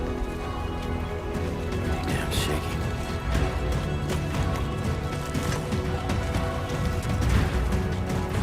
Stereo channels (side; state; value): both; identical; correlation 1.00